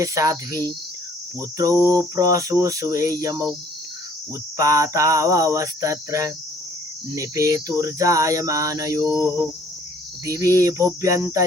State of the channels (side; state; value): both; normal; correlation 0.58